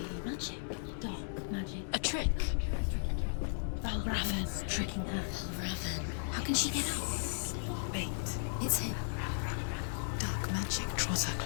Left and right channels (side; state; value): right; silent; 54 dB below the other